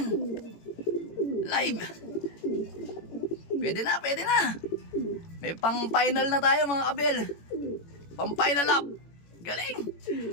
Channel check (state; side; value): late; right; 18 ms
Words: Live. Pwede na. May pang-final na tayo mga kabel. Pang-final lap.